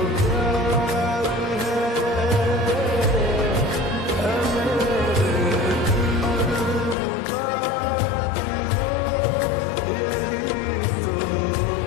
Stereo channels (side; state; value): right; drops out; at 7.0 s